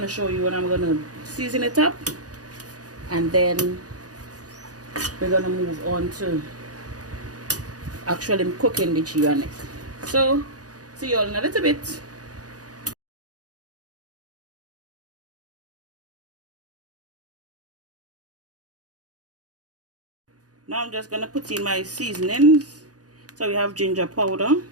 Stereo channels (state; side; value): late; left; 0.68 ms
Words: to show you when I'm going to season it up, and then we're going to move on to actually cooking the Geera neck. So see you all in a little bit. Now I'm just going to put in my seasonings. So we have ginger powder.